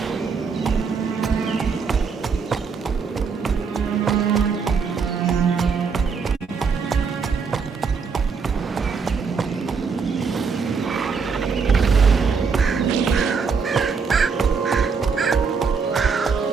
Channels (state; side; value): quieter; left; 5.4 dB